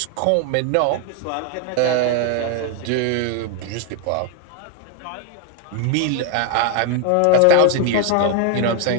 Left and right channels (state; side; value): different; both; correlation 0.01